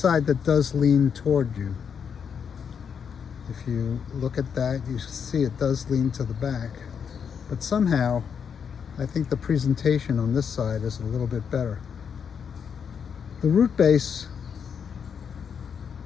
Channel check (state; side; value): quieter; right; 7.0 dB